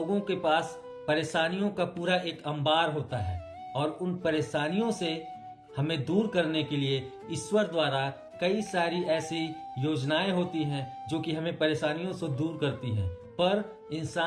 के पास परेशानियों का पूरा एक अंबार होता है और उन परेशानियों से हमें दूर करने के लिए ईश्वर द्वारा कई सारी ऐसी योजनाएं होती हैं जो कि हमें परेशानियों से दूर करती हैं, पर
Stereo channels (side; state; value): both; identical; correlation 1.00